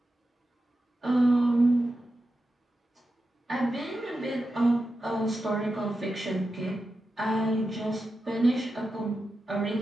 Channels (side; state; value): both; normal; correlation 0.90